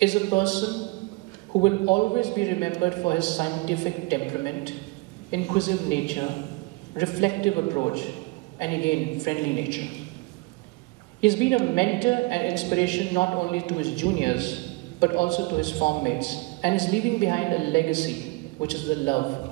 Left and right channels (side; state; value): left; quieter; 25.2 dB